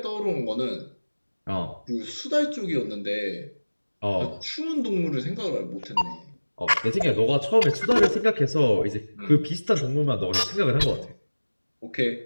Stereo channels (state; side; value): inverted; both; correlation -1.00